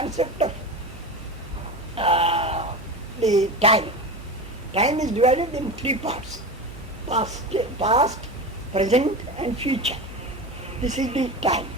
of the time. Time is divided in three parts: past, present and future. This is the time.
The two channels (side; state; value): both; normal; correlation 0.26